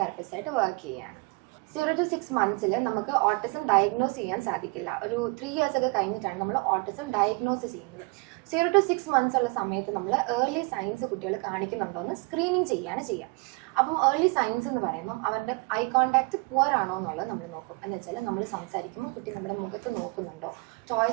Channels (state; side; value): quieter; left; 29.2 dB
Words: തെറപ്പിസ്റ്റായിട്ട് വർക്ക് ചെയ്യുകയാണ്. 0 to 6 months നമുക്ക് ഓട്ടിസം ഡയഗ്നോസ് ചെയ്യാൻ സാധിക്കില്ല. ഒരു 3 years ഒക്കെ കഴിഞ്ഞിട്ടാണ് നമ്മൾ ഓട്ടിസം ഡയഗ്നോസ് ചെയ്യുന്നത്. 0 to 6 months ഉള്ള സമയത്ത് നമ്മൾ ഏർലി സൈൻസ് കുട്ടികൾ കാണിക്കുന്നുണ്ടോ എന്ന് സ്ക്രീനിങ് ചെയ്യാണ് ചെയ്യുക. അപ്പം ഏർലി സൈൻസ് എന്ന് പറയുമ്പം അവരുടെ ഐ കോൺടാക്റ്റ് പുവർ ആണോ എന്നുള്ളത് നമ്മൾ നോക്കും. എന്ന് വെച്ചാൽ നമ്മൾ സംസാരിക്കുമ്പോൾ കുട്ടി നമ്മുടെ മുഖത്ത് നോക്കുന്നുണ്ടോ,